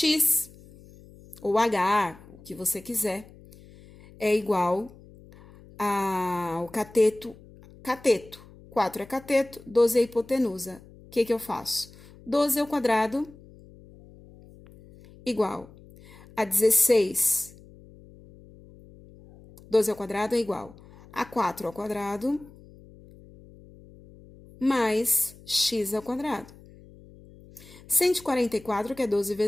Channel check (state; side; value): noise; left; hum, 22 dB below the sound